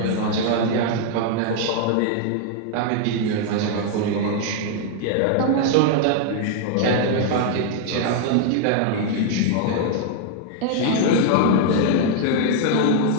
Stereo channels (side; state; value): both; different; correlation 0.00